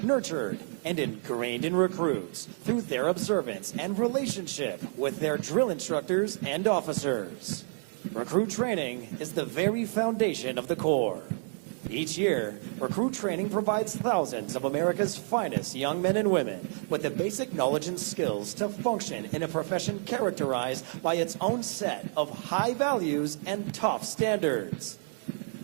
nurtured, and ingrained in recruits through their observance and relationship with their drill instructors and officers. Recruit training is the very foundation of the Corps. Each year, recruit training provides thousands of America's finest young men and women with the basic knowledge and skills to function in a profession characterized by its own set of high values and top standards.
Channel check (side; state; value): left; silent; 58 dB below the other